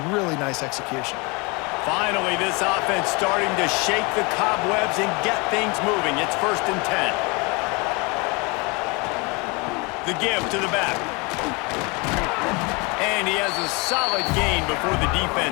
really nice execution. Finally, this offense starting to shake the cobwebs and get things moving. It's 1st and 10. The give to the back. And he has a solid gain before the defense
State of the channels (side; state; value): right; quieter; 28.5 dB